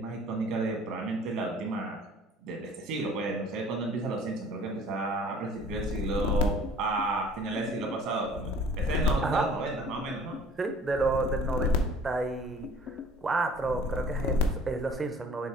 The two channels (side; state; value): both; normal; correlation 0.50